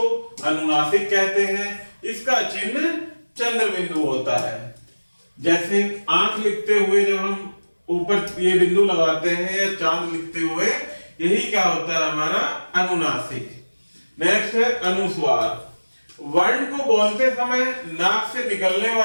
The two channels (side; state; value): both; inverted; correlation -1.00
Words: अनुनासिक कहते हैं। इसका चिन्ह चंद्र बिंदु होता है। जैसे आंख लिखते हुए जब हम ऊपर ये बिंदु लगाते हैं या चांद लिखते हुए, यही क्या होता है हमारा अनुनासिक। नेक्स्ट है अनुस्वार। वर्ण को बोलते समय नाक से निकलने